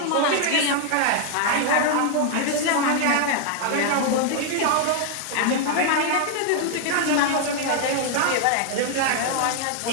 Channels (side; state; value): both; different; correlation 0.00